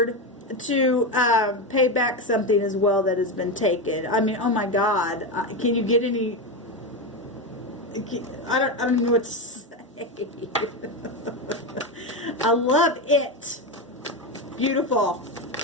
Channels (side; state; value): both; normal; correlation 0.14